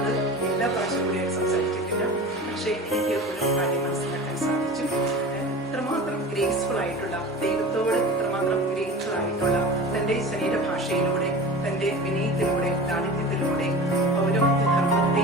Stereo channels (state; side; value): normal; both; correlation 0.35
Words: എല്ലാ പ്രാവശ്യം കൂടി സംസാരിച്ചിട്ടില്ല. പക്ഷേ എനിക്ക് ഒരു കാര്യം മനസ്സിലാക്കാൻ സാധിച്ചു. ഇത്രമാത്രം ഗ്രേസ്ഫുൾ ആയിട്ടുള്ള, ദൈവത്തോട് ഇത്രമാത്രം ഗ്രേസ്ഫുൾ ആയിട്ടുള്ള, തന്റെ ശരീരഭാഷയിലൂടെ, തന്റെ വിനയത്തിലൂടെ, ലാളിത്യത്തിലൂടെ പൗരോഹിത്യ ധർമ്മത്തെ